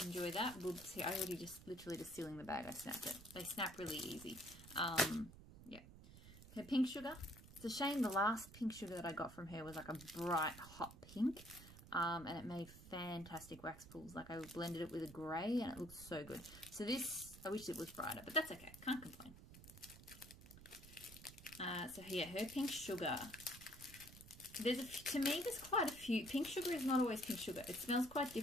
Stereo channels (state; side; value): noise; right; rumble, 17 dB below the sound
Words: enjoy that. We'll see. I already literally just sealing the bag. I snapped it. They snap really easy. Yeah. Okay, pink sugar. It's a shame the last pink sugar that I got from her was like a bright hot pink. And it made fantastic wax pools. Like, I blended it with a grey and it looks so good. So this, I wish it was brighter, but that's okay. Can't complain. So yeah, her pink sugar. To me, there's quite a few. Pink sugar is not always pink sugar. It smells quite